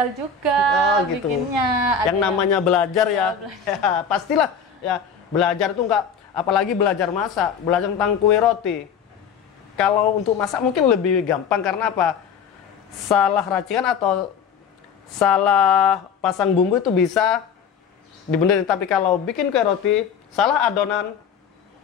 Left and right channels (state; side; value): quieter; right; 6.4 dB